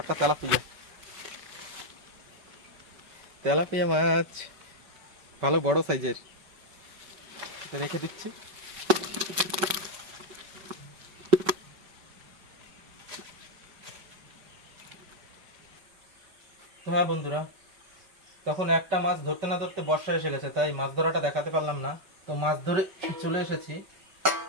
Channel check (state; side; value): late; left; 5.3 ms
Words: একটা তেলাপিয়া, তেলাপিয়া মাছ, ভালো বড় সাইজের। এটা রেখে দিচ্ছি। তো হ্যাঁ বন্ধুরা, তখন একটা মাছ ধরতে না ধরতে বর্ষা এসে গেছে, তাই মাছ ধরাটা দেখাতে পারলাম না। তো মাছ ধরে চলে এসেছি।